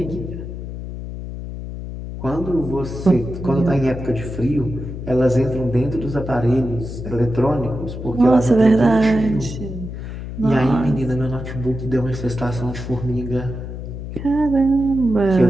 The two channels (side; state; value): left; noise; hum, 8 dB below the sound